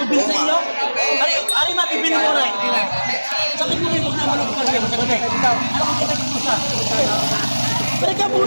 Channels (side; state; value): both; inverted; correlation -1.00